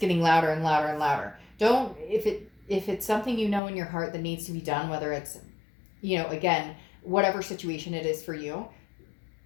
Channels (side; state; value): right; drops out; at 3.6 s